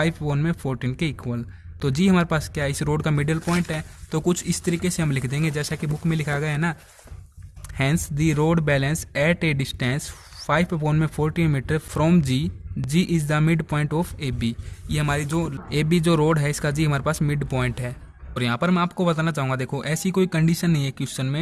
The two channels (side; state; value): both; identical; correlation 1.00